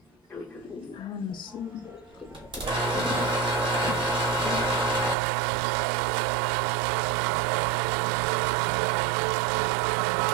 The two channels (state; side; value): drops out; left; at 5.2 s